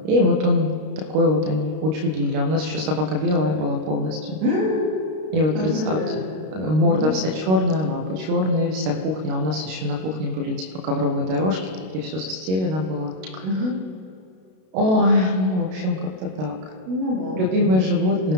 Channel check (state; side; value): late; left; 32 ms